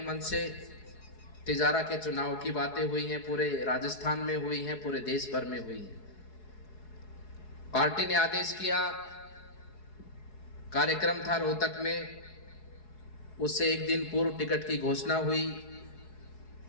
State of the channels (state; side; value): late; right; 4.7 ms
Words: मन से तिजारा के चुनाव की बातें हुई हैं, पूरे राजस्थान में हुई हैं, पूरे देश भर में हुई हैं। पार्टी ने आदेश किया, कार्यक्रम था रोहतक में, उससे एक दिन पूर्व टिकट की घोषणा हुई।